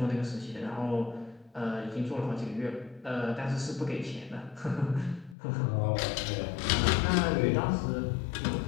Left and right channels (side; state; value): right; drops out; at 5.4 s